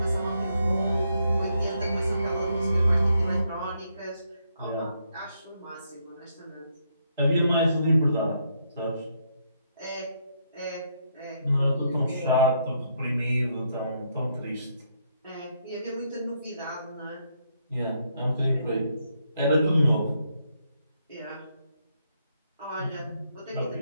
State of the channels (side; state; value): both; inverted; correlation -0.76